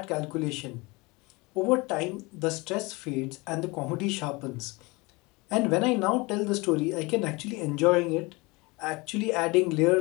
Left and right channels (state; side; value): quieter; right; 25.1 dB